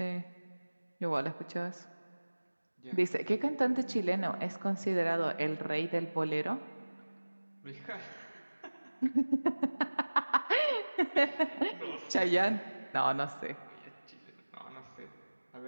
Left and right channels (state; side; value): inverted; both; correlation -1.00